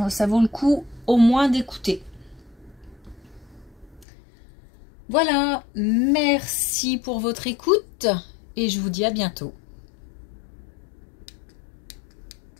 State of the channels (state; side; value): drops out; right; at 4.0 s